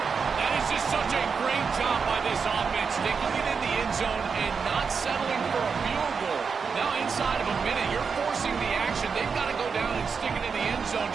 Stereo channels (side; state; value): left; quieter; 5.6 dB